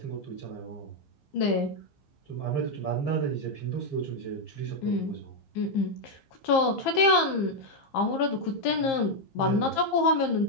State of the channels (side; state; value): right; late; 15 ms